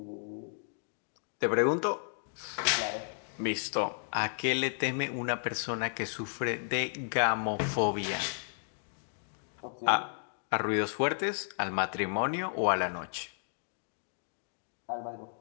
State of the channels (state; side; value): silent; right; digital silence